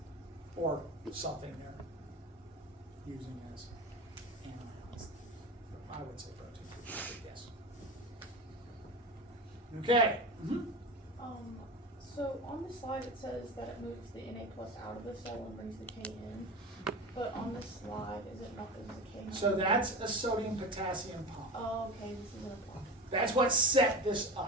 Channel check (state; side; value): normal; both; correlation 0.27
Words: Or something they're using as anions. I would say protein, but yes. Okay. Mm-hmm. So on the slide it says that it moves the Na plus out of the cell and brings the K in, but on this slide, is it not, there's a K? So that's a sodium-potassium pump. Oh, okay, this isn't a pump. That's what set this